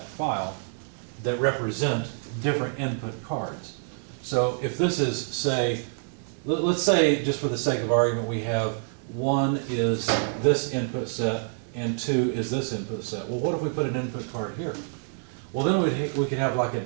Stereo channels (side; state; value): left; silent; 58 dB below the other